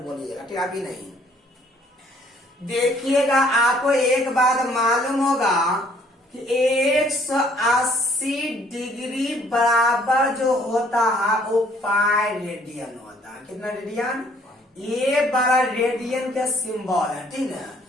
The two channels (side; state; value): both; normal; correlation 0.62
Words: ठीक। अभी नहीं देखिएगा, आपको एक बात मालूम होगा कि 180 डिग्री बराबर जो होता है वो पाई रेडियन होता है। कितना रेडियन, ये बड़ा रेडियन का सिंबल है, ठीक है।